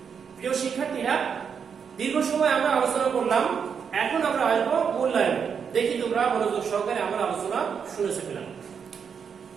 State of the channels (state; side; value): quieter; left; 6.8 dB